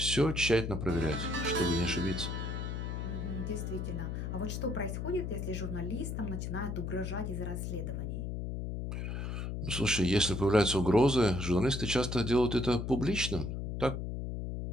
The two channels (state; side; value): noise; left; hum, 4 dB below the sound